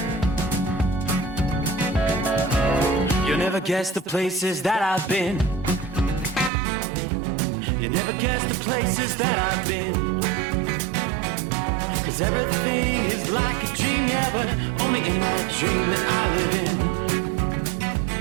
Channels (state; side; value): drops out; left; at 6.5 s